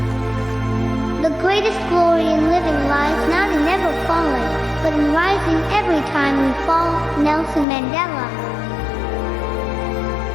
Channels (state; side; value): drops out; right; at 7.7 s